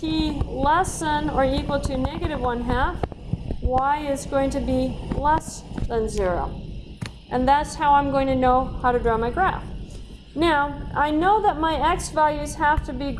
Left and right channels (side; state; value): both; identical; correlation 1.00